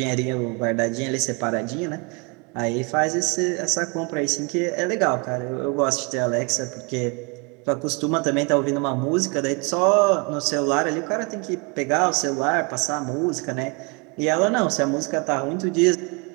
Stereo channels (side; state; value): left; quieter; 32.2 dB